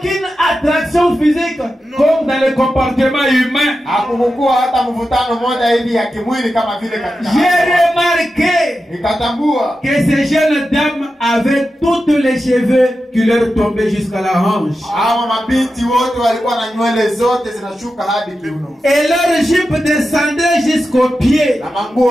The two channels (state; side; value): normal; both; correlation 0.91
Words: attraction physique comme dans le comportement humain. Hakukuwa hata mvutano moja hivi ya kimwili kama vile katika. J'ai remarqué Nikatambua que ces jeunes dames avaient tous les cheveux qui leur tombaient jusqu'à la hanche. hawa mabinti wote walikuwa na nywele zote zinashuka hadi kiuno. Et leur jupe descendait jusqu'aux pieds. Na manguo